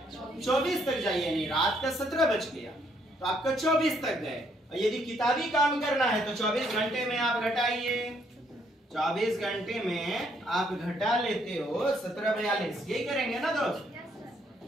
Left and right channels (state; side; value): normal; both; correlation 0.70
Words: 24 तक जाइए, यानी रात का 17 बज गया तो आपका 24 तक गए। और यदि किताबी काम करना है तो 24 घंटे में आप घटाइए। 24 घंटे में आप घटा लेते हो 17:42, यही करेंगे ना दोस्त?